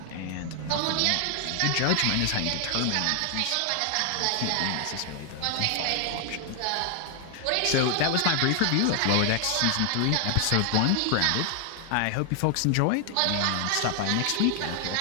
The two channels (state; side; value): different; both; correlation 0.00